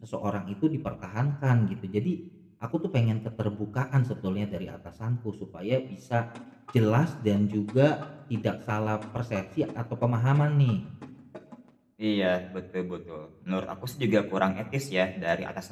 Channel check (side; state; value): both; identical; correlation 1.00